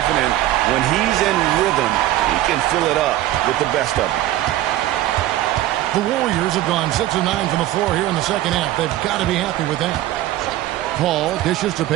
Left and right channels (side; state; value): left; quieter; 14.5 dB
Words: when he's in rhythm, he can fill it up with the best of them. The Warriors have gone 6 of 9 from the floor here in the second half. They've got to be happy with that. Paul dishes to